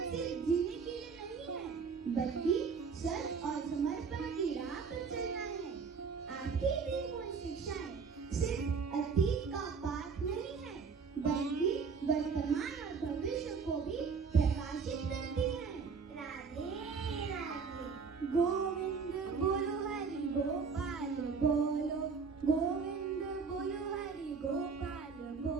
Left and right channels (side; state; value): left; quieter; 5.4 dB